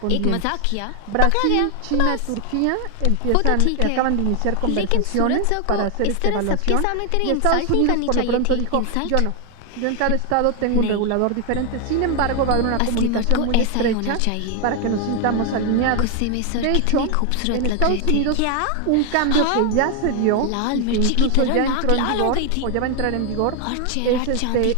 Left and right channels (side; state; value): both; different; correlation 0.01